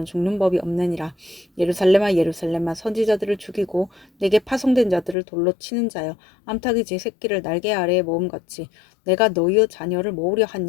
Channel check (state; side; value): drops out; right; at 5.2 s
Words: 죽는 법이 없느니라. 예루살렘아 예루살렘아 선지자들을 죽이고 내게 파송된 자들을 돌로 치는 자여 암탉이 제 새끼를 날개 아래에 모음같이 내가 너희의 자녀를 모으려 한